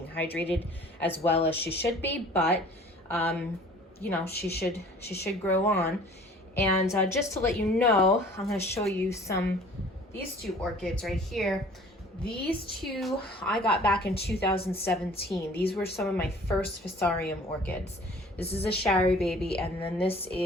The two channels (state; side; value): normal; both; correlation 0.50